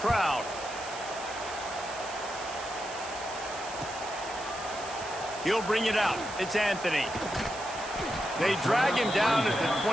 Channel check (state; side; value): noise; right; hiss, 13 dB below the sound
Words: crowd. He'll bring it out. It's Anthony. They drag him down at the